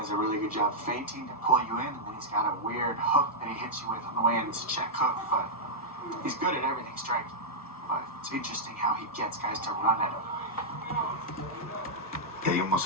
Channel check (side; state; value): both; normal; correlation -0.07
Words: does a really good job feinting to pull you in, and then he's got a weird hook that he hits you with on the way in. It's a check hook, but he's good at everything striking. But it's interesting how he gets guys to run at him. Yeah, he